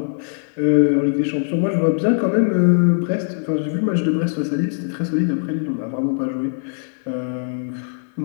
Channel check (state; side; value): silent; right; 61 dB below the other